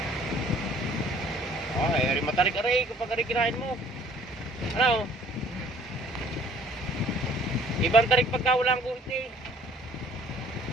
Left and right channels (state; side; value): normal; both; correlation 0.55